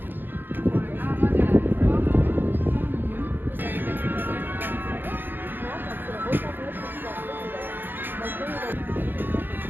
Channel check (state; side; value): late; left; 0.095 ms